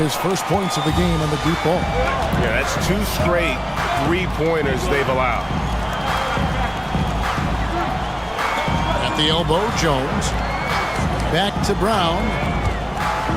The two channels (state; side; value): identical; both; correlation 1.00